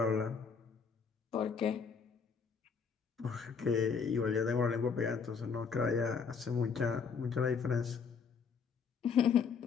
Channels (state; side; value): quieter; right; 5.8 dB